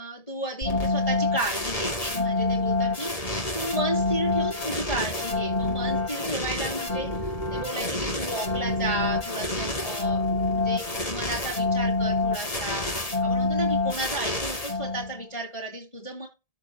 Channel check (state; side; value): late; right; 1.7 ms